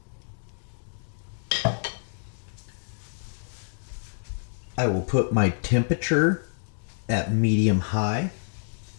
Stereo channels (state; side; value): silent; right; digital silence